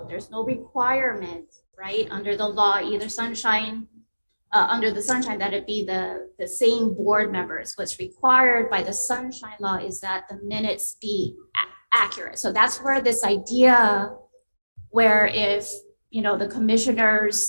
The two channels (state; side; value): inverted; both; correlation -1.00